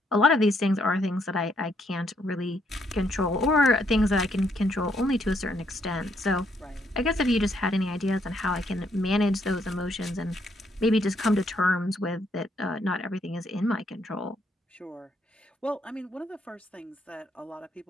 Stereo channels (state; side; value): normal; both; correlation 0.73